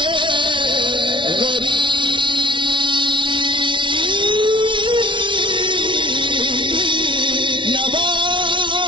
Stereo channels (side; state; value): left; late; 0.24 ms